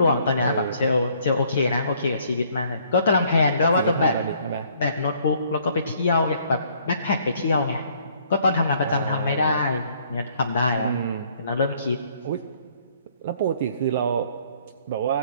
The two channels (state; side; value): inverted; both; correlation -0.63